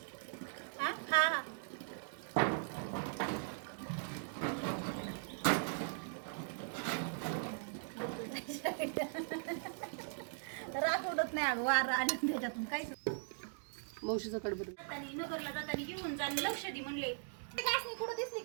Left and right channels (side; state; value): left; silent; digital silence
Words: राग उडत नाही अगं, वारा आणि त्याच्यातून काय मावशीचा कडबर नगरला जाताना घेऊन जा, लक्ष दे म्हणले. गासनी कुठं दिसली